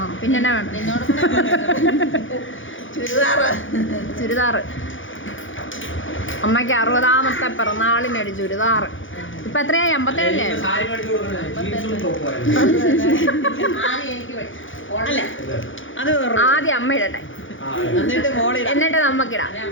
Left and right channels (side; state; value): right; late; 0.57 ms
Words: പിന്നെ എന്നാ വേണ്ട? നിന്നോട് ചുരിദാറ് ചുരിദാറ്. അമ്മയ്ക്ക് 60ാമത്തെ പിറന്നാളിനൊരു ചുരിദാറ്. ഇപ്പൊ എത്രയായി? 57 സാരി മേടിച്ചു കൊടുക്കുന്നത് ജീൻസും ടോപ്പും ആദ്യം എനിക്ക് ഓടല്ലേ അത് ആദ്യം അമ്മ ഇടട്ടെ, എന്നിട്ട് മോളിൽ എന്നിട്ട് നമുക്കിടാം.